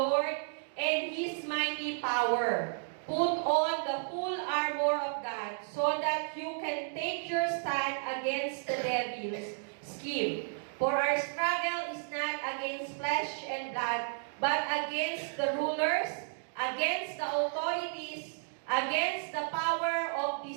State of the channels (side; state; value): left; silent; digital silence